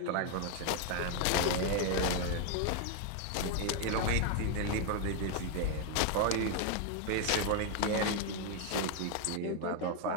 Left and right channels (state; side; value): different; both; correlation 0.00